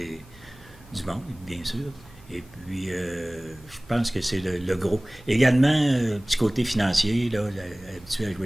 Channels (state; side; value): noise; right; hum, 24 dB below the sound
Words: monde, bien sûr. Et puis, je pense que c'est le gros. Également, petit côté financier, là, habitué à